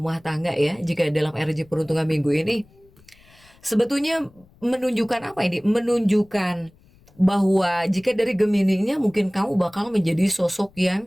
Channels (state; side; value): noise; left; rumble, 29 dB below the sound